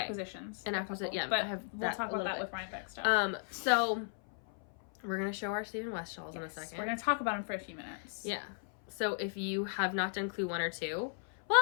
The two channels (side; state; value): right; silent; 54 dB below the other